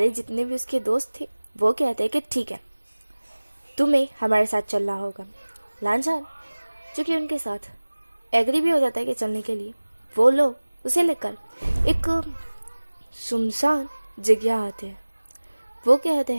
जितने भी उसके दोस्त थे वो कहते हैं कि ठीक है, तुम्हें हमारे साथ चलना होगा। लांझान जो कि उनके साथ एग्री भी हो जाता है कि चलने के लिए, वो लोग उसे लेकर एक सुनसान जगह आते हैं। वो कहते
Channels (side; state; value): both; inverted; correlation -1.00